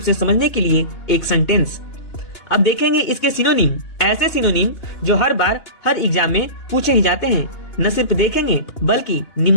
से समझने के लिए एक सेंटेंस। अब देखेंगे इसके सिनोनिम, ऐसे सिनोनिम जो हर बार हर एग्जाम में पूछे ही जाते हैं। न सिर्फ देखेंगे बल्कि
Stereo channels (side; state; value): right; late; 2.9 ms